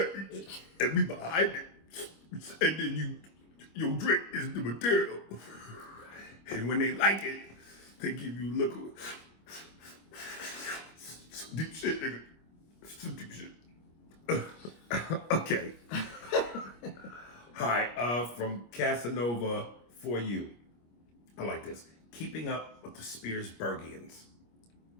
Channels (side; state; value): right; late; 25 ms